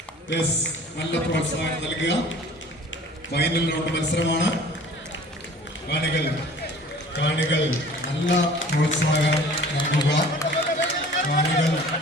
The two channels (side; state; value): both; normal; correlation 0.47